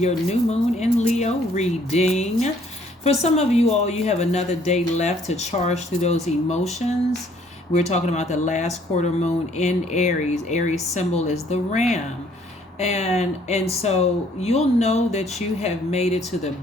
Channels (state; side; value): normal; both; correlation 0.62